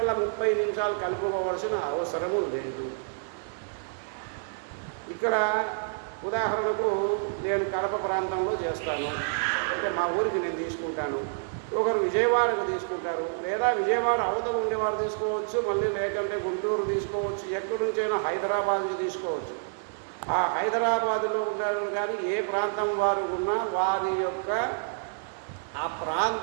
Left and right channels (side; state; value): left; silent; digital silence